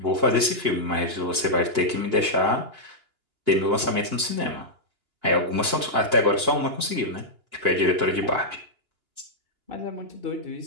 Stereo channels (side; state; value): left; late; 2.9 ms